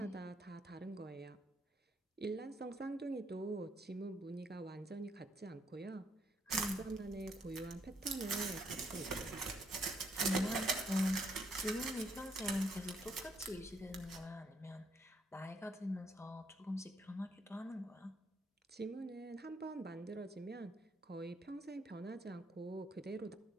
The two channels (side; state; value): both; normal; correlation 0.71